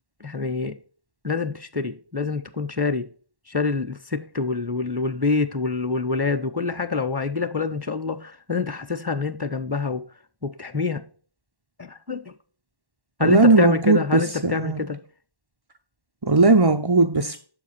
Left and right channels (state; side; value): late; left; 1.1 ms